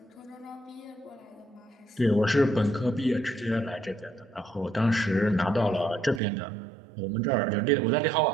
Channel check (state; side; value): drops out; left; at 6.2 s